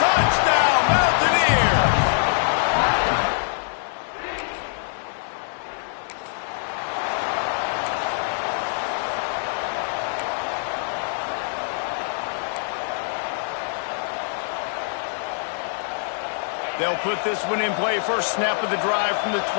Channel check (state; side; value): silent; right; digital silence